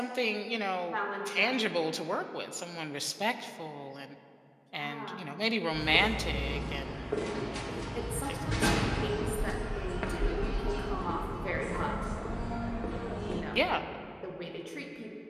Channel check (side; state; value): both; identical; correlation 1.00